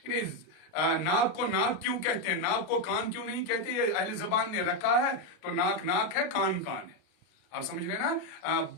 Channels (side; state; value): right; late; 33 ms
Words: नाक को नाक क्यों कहते हैं, नाक को कान क्यों नहीं कहते, ये अहले जबान ने रखा है, तो नाक नाक है, कान कान है। आप समझ रहे हैं ना।